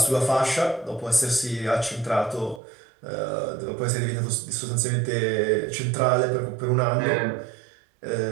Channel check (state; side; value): drops out; left; at 2.6 s